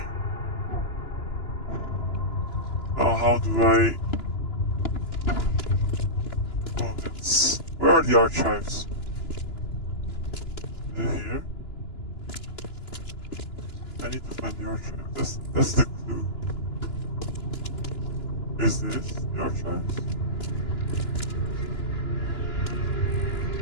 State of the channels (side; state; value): right; late; 2.9 ms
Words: Now how do I... Oh, it's... Where are the archives? Is it here? I need to find the archive. That's the clue. Is this the archives?